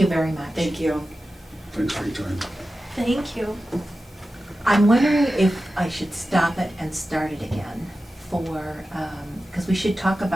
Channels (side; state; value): both; normal; correlation 0.93